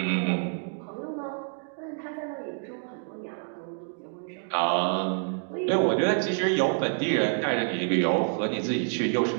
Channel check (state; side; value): silent; left; 56 dB below the other